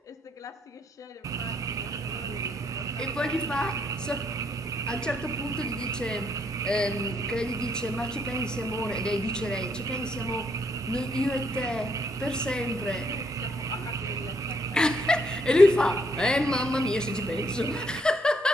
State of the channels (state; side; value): normal; both; correlation 0.72